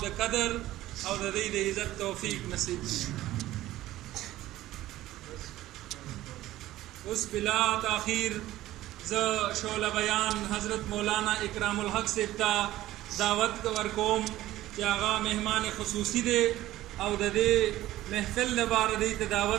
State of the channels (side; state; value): left; quieter; 15.3 dB